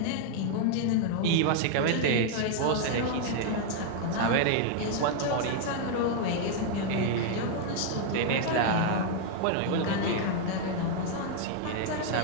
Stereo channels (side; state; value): both; different; correlation 0.00